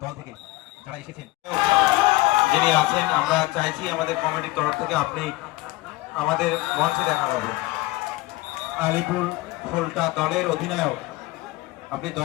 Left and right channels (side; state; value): right; quieter; 20.1 dB